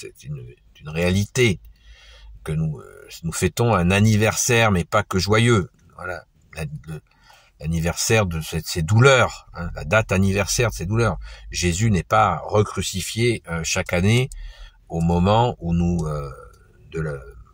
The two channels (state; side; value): identical; both; correlation 1.00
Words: une réalité que nous fêtons un anniversaire, mais pas que joyeux. Voilà, l'anniversaire de ces douleurs, la date anniversaire de ces douleurs. Jésus n'est pas recrucifié chaque année au moment où